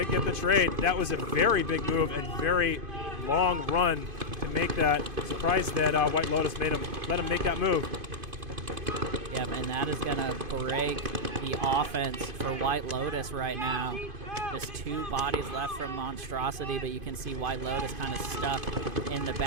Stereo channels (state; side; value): late; left; 2.5 ms